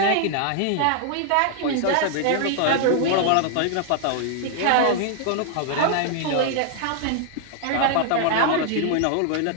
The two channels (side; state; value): both; different; correlation 0.00